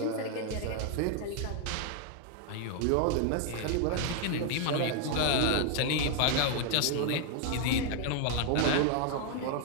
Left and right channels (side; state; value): both; different; correlation 0.00